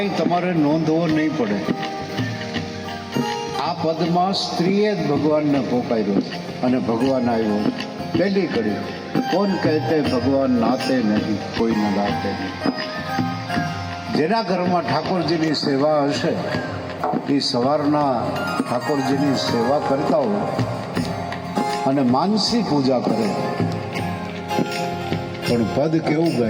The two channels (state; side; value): identical; both; correlation 1.00